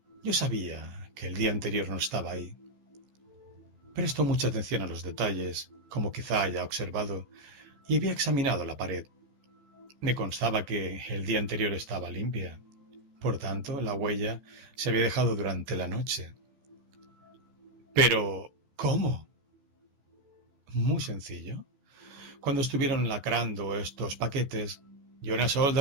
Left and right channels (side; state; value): left; late; 14 ms